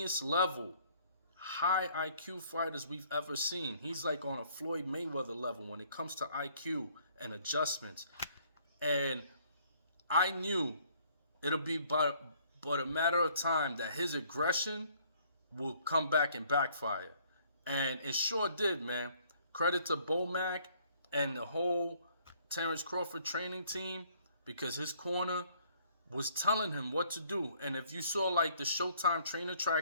level, high IQ fighters we've ever seen. He's like on a Floyd Mayweather level when it comes to IQ and adjustments. And I knew it'll be but a matter of time that his aggression will come back and backfire. And it sure did, man. Credit to Bomac and the whole Terence Crawford training team, because his corner was telling him what to do. And if you saw like the Showtime trainer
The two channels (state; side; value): inverted; both; correlation -0.62